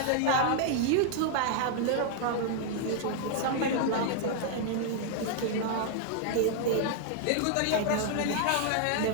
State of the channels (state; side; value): different; both; correlation 0.00